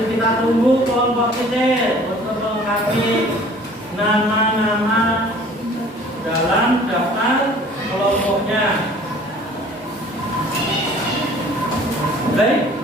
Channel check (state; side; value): normal; both; correlation 0.50